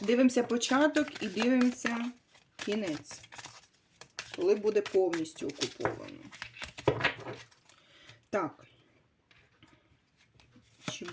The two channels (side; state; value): both; identical; correlation 1.00